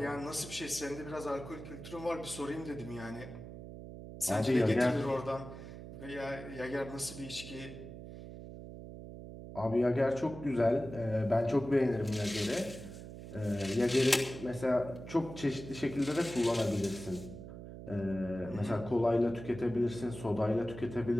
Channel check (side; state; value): right; noise; hum, 12 dB below the sound